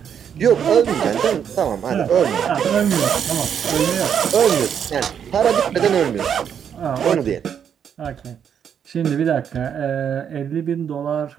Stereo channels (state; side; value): quieter; left; 8.2 dB